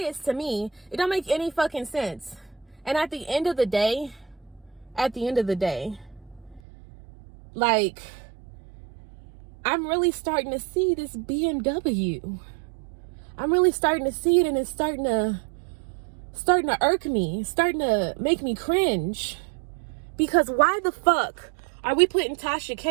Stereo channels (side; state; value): left; drops out; at 6.6 s